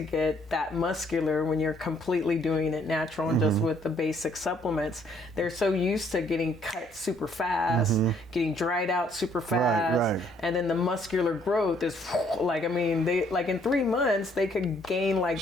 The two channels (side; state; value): both; normal; correlation 0.66